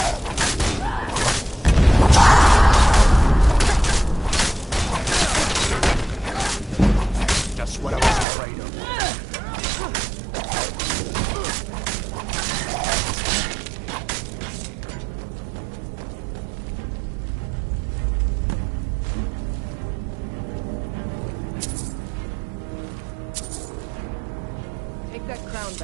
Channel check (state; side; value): drops out; left; at 8.2 s